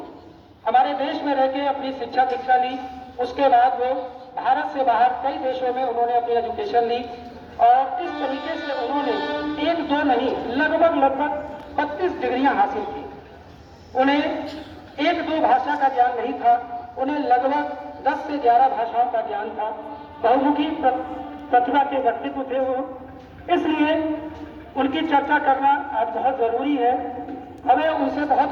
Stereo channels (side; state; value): both; identical; correlation 1.00